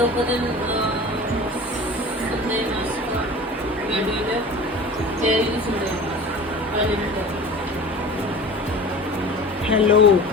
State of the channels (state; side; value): normal; both; correlation 0.38